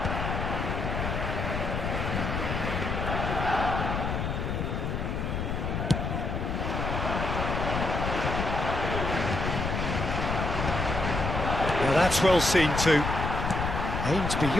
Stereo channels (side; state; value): left; noise; rumble, 2 dB below the sound